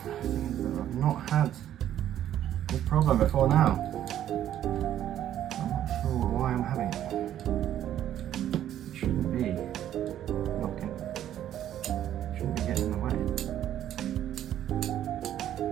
I've not had this problem before now. Why I'm having it. It shouldn't be knocking, shouldn't be getting in the way.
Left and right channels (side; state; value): left; quieter; 11.3 dB